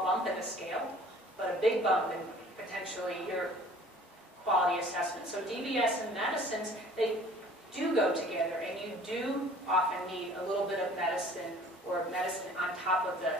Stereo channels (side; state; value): both; normal; correlation 0.50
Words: bump in the scale, but a big bump in potentially your quality assessment. So DBS and medicines, they do go together, and you do often need a little bit of medicine or medicine on top of the